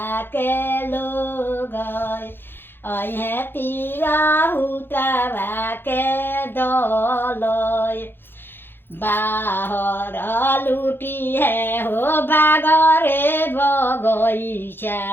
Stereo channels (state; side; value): late; right; 0.10 ms